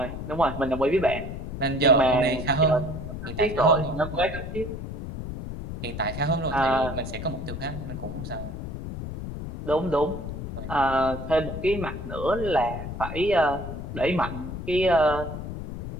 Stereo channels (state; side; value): noise; left; rumble, 7 dB below the sound